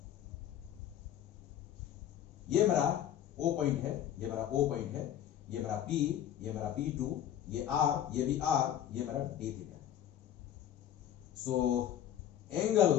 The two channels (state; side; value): quieter; right; 10.7 dB